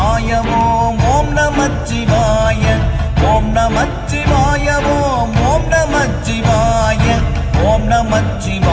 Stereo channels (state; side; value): identical; both; correlation 1.00